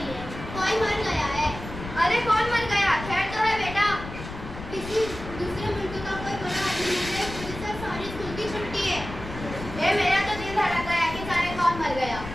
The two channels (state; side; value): noise; left; rumble, 11 dB below the sound